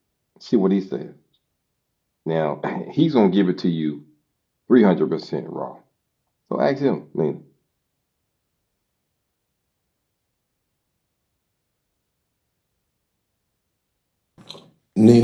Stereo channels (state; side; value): identical; both; correlation 1.00